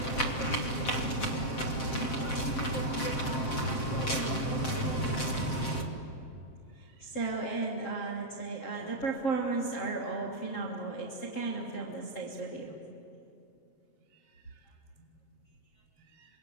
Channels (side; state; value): right; late; 7.6 ms